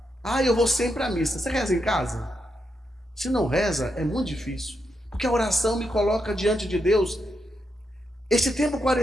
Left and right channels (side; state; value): both; normal; correlation 0.83